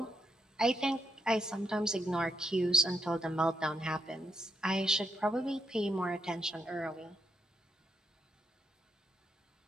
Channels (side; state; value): both; normal; correlation 0.78